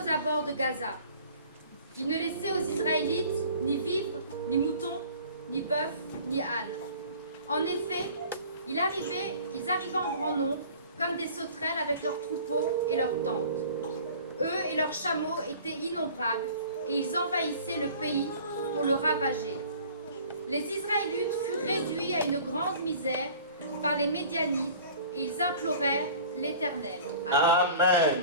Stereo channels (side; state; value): both; inverted; correlation -0.46